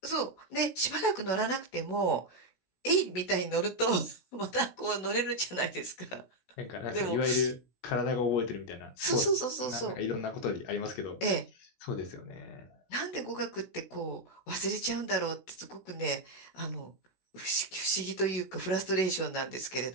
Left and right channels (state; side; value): late; right; 16 ms